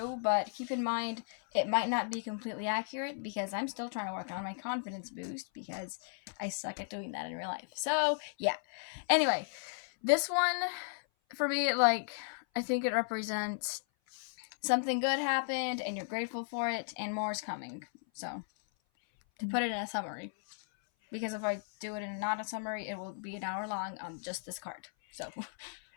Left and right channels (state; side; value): silent; right; 54 dB below the other